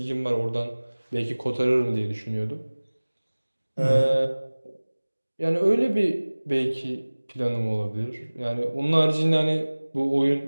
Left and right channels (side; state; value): both; inverted; correlation -1.00